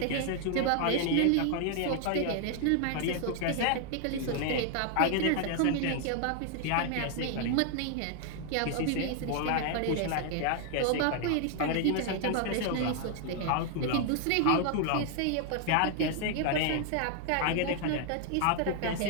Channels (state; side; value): different; both; correlation 0.00